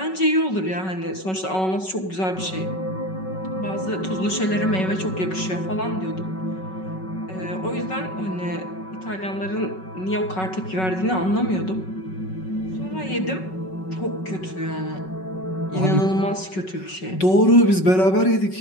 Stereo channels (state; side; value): late; right; 5.3 ms